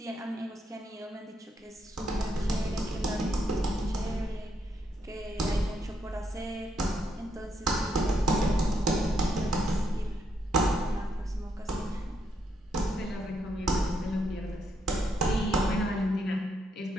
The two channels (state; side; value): normal; both; correlation 0.77